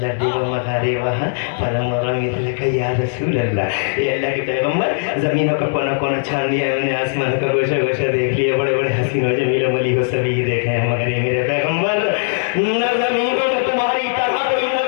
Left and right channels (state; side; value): silent; right; digital silence